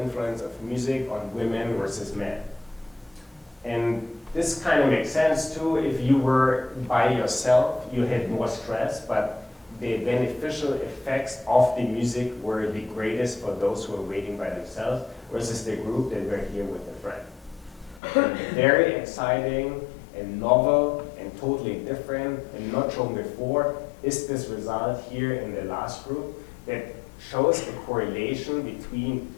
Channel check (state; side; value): drops out; right; at 18.0 s